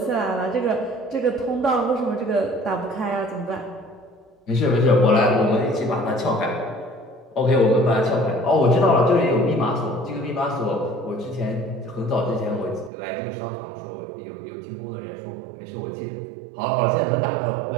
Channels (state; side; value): drops out; left; at 12.9 s